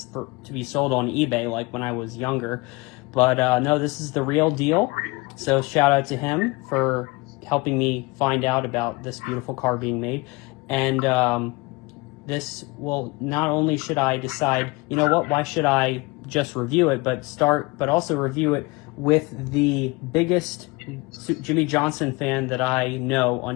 to be sold on eBay, like when I was younger. But no, this is the real deal. So shout out to him for helping me find out about this beautiful car being made. And this will, not only should I decide, you know what, why should I just review it, but also review it with the biggest Jimmie Johnson fan that I know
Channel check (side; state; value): right; quieter; 24.5 dB